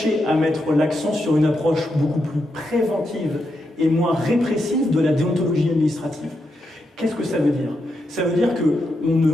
à mettre l'accent sur une approche beaucoup plus préventive et moins répressive de la déontologie administrative. Qu'est-ce que ça veut dire? Ça veut dire qu'on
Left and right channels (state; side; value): normal; both; correlation 0.84